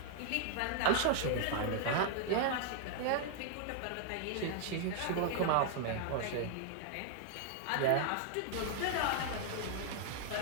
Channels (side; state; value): both; different; correlation -0.01